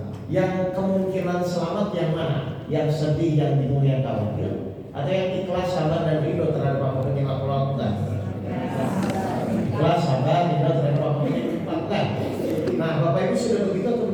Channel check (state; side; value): identical; both; correlation 1.00